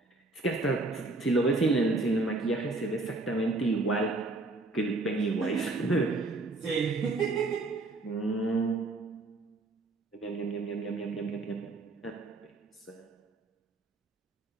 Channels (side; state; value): left; quieter; 3.1 dB